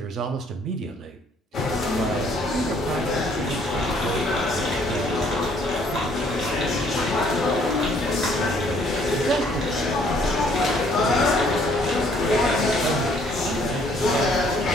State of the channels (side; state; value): both; normal; correlation 0.63